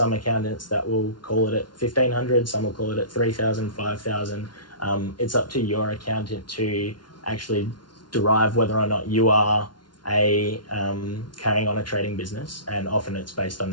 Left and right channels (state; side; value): late; right; 0.70 ms